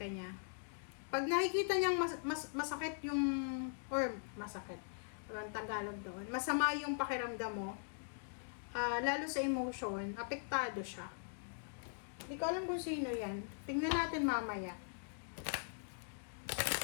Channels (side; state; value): right; silent; digital silence